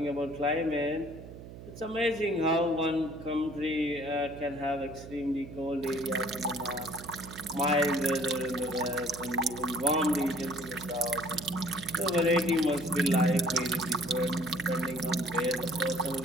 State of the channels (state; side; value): noise; right; hum, 14 dB below the sound